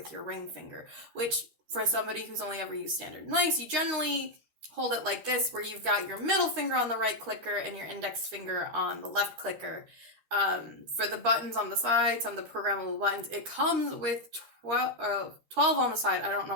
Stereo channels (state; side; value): late; left; 13 ms